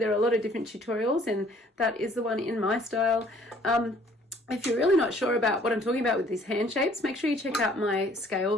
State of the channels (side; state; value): both; normal; correlation 0.58